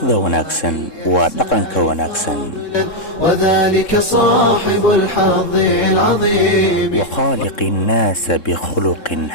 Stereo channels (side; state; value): right; late; 3.7 ms